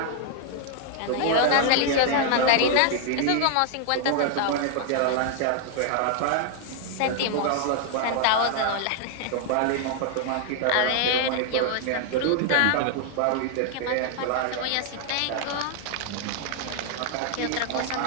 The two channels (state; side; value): different; both; correlation 0.00